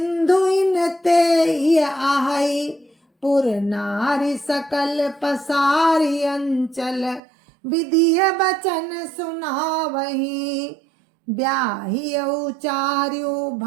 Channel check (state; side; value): drops out; left; at 7.2 s